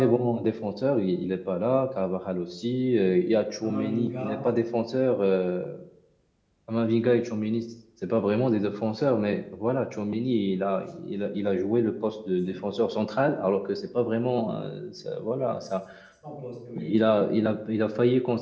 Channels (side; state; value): both; identical; correlation 1.00